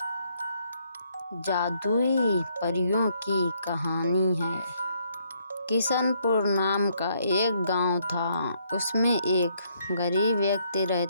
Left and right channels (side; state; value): both; inverted; correlation -0.71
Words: जादुई परियों की कहानी है। किशनपुर नाम का एक गांव था। उसमें एक गरीब व्यक्ति